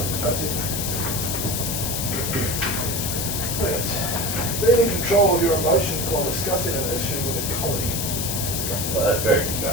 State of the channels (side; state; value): left; noise; hiss, 2 dB below the sound